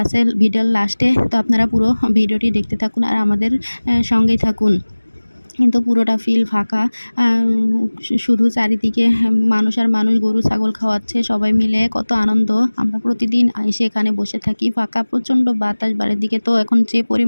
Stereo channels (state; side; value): inverted; both; correlation -1.00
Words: আছে ভিডিওর লাস্টে। তো আপনারা পুরো ভিডিওটি দেখতে থাকুন আর আমাদের সঙ্গেই থাকুন। কিন্তু পুরোটা ফিল ফাঁকা, শুধু চারিদিকে মানুষ আর মানুষ, গরু ছাগল খাওয়াচ্ছে সবাই মিলে, কত আনন্দ। আমরা প্রতিদিন এসে এখানে বসে থাকি। ফাঁকা, প্রচণ্ড বাতাস বাড়ির দিকে। তো এখন যে